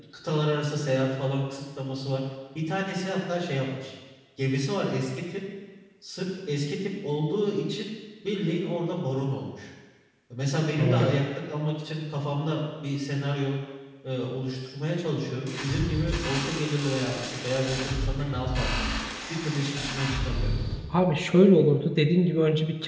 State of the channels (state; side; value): identical; both; correlation 1.00